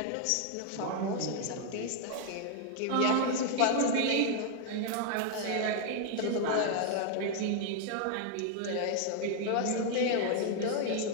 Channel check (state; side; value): different; both; correlation 0.00